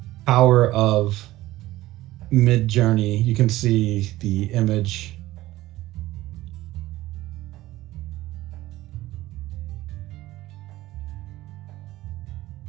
power of Midjourney, you can see the image.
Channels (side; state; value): left; quieter; 16.7 dB